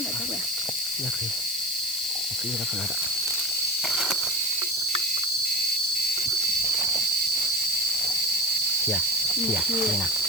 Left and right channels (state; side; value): noise; left; hiss, 8 dB below the sound